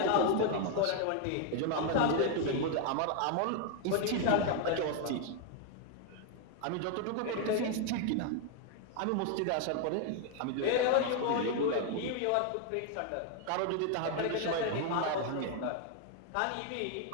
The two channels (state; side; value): different; both; correlation 0.00